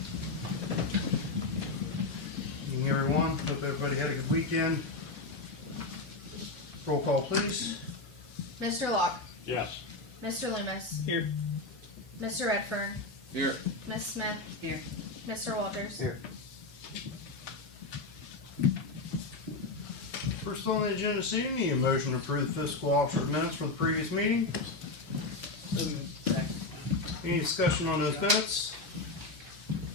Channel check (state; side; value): quieter; right; 3.3 dB